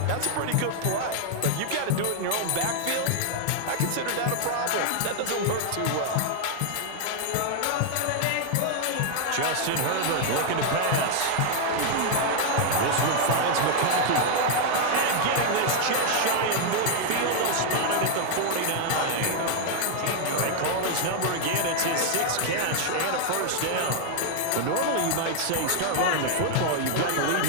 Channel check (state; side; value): different; both; correlation 0.00